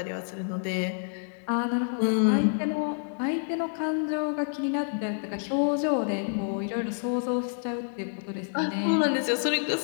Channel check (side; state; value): right; silent; digital silence